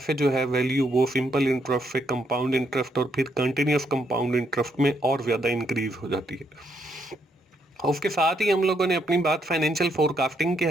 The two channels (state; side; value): normal; both; correlation 0.75